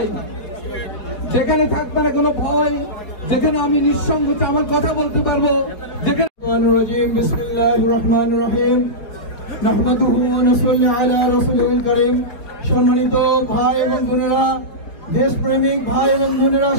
যেখানে থাকবে না কোনো ভয়, যেখানে আমি নিঃসংকোচে আমার কথা বলতে পারবো, যেখানে বিসমিল্লাহির রহমানির রহিম। নাহমাদুহু ওয়া নুসাল্লি আলা রাসূলিল কারীম। সম্মানিত ভাই এবং বোনেরা, দেশপ্রেমিক ভাই এবং বোনেরা,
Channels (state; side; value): late; right; 4.8 ms